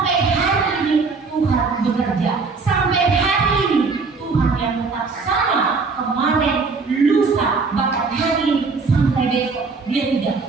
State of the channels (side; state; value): left; quieter; 4.4 dB